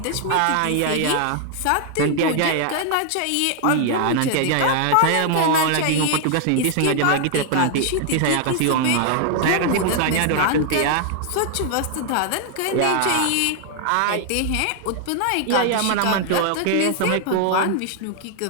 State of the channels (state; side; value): different; both; correlation 0.00